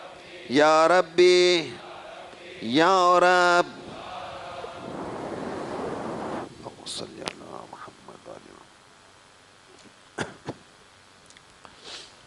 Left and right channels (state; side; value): identical; both; correlation 1.00